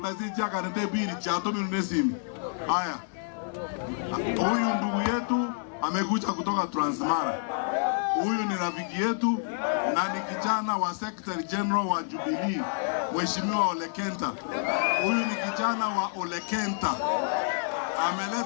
chaka nende bili cha tomi nunesimu. Haya. Huyu ndugu yetu amekuja kutoka Transmara. Huyu ni rafiki yetu na ni kijana wa Secretary General wa Jubilee, Mheshimiwa Ole Kenta. Huyu ni kijana wa Ole Kenta.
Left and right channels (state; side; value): silent; right; digital silence